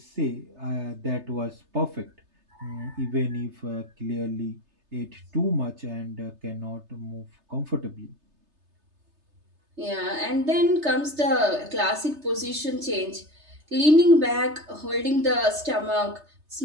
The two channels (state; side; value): late; left; 3.3 ms